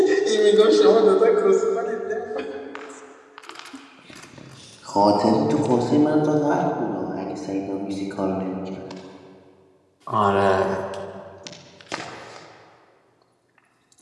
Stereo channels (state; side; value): identical; both; correlation 1.00